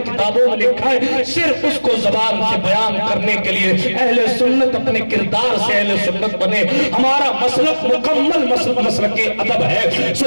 کتابوں میں لکھا ہے صرف اس کو زبان سے بیان کرنے کے لیے اہل سنت اپنے کردار سے اہل سنت بنے۔ ہمارا مسلک مکمل مسلک ادب ہے۔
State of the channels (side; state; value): both; inverted; correlation -1.00